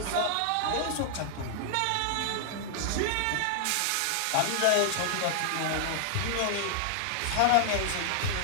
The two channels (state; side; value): different; both; correlation 0.00